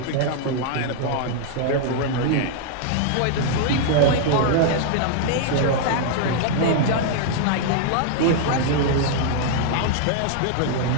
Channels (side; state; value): both; different; correlation -0.01